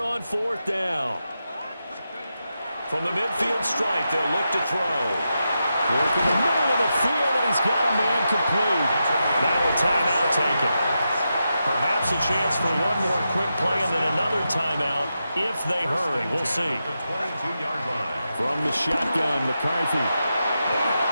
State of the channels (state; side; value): inverted; both; correlation -0.88